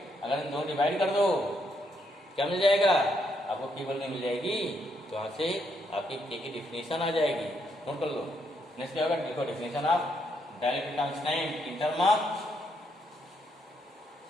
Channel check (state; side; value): normal; both; correlation 0.76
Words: अगर इन दोनों डिवाइड कर दो क्या मिल जाएगा आपको, केवल नहीं मिल जाएगी, तो यहाँ से आपकी के की डिफिनेशन आ जाएगी, नोट कर लो। नेक्स्ट क्या होगा, देखो definition of dielectric constant in term of,